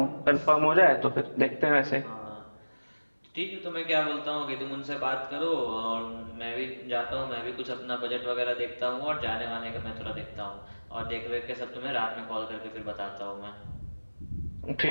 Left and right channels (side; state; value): both; inverted; correlation -1.00